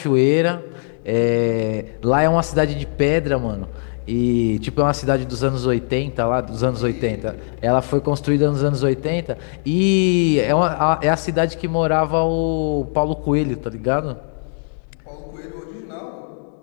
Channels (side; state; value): right; silent; 58 dB below the other